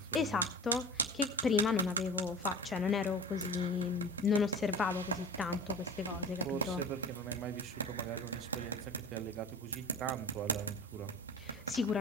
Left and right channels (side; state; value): both; normal; correlation 0.36